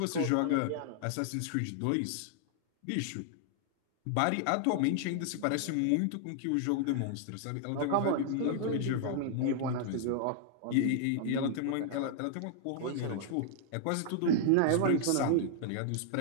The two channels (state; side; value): different; both; correlation 0.00